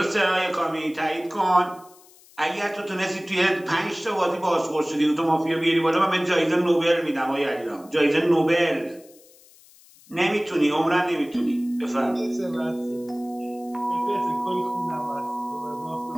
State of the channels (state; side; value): noise; left; hiss, 26 dB below the sound